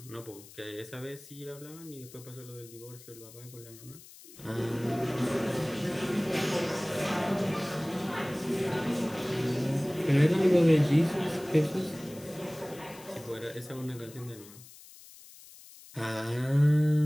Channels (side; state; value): left; noise; hiss, 20 dB below the sound